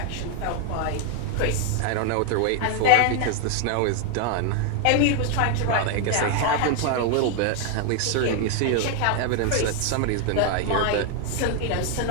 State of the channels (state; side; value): different; both; correlation 0.01